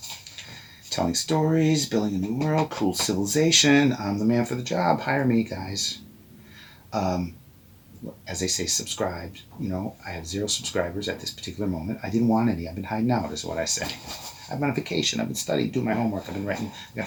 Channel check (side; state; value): both; identical; correlation 1.00